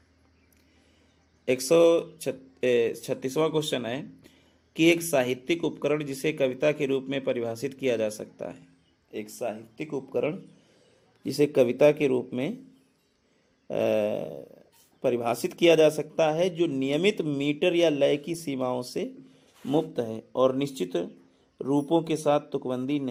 136वां क्वेश्चन है कि एक साहित्यिक उपकरण जिसे कविता के रूप में परिभाषित किया जा सकता है। एक साहित्यिक उपकरण जिसे कविता के रूप में परिभाषित किया जा सकता है, जो नियमित मीटर या लय की सीमाओं से मुक्त है और निश्चित रूपों के साथ तुकबंदी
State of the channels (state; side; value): identical; both; correlation 1.00